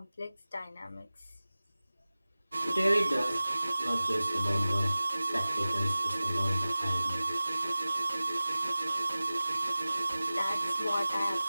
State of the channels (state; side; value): inverted; both; correlation -0.97